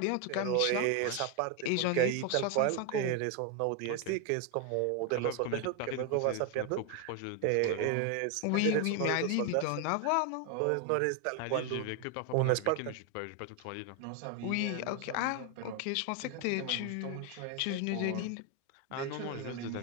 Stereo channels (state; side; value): different; both; correlation 0.01